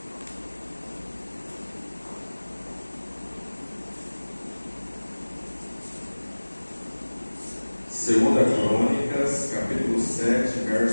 Segunda Crônicas, capítulo 7,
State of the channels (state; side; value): inverted; both; correlation -1.00